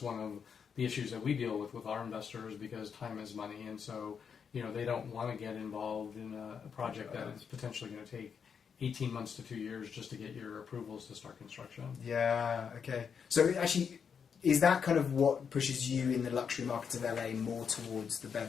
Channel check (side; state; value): right; quieter; 6.7 dB